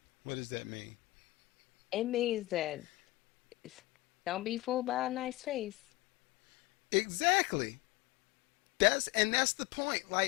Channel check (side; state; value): right; quieter; 19.6 dB